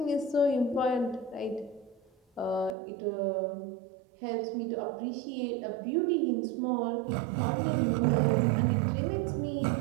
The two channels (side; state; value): left; drops out; at 2.8 s